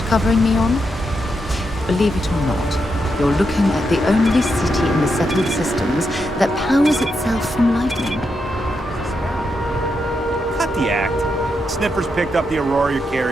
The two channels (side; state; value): both; normal; correlation 0.83